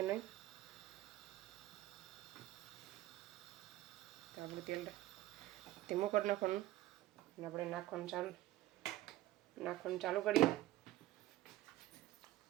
નહીં. તો આપણું તેલ ધીમું કરી નાખવાનું અને આપણે નાખવાનું ચાલુ કરીએ.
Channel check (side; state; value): left; quieter; 15.6 dB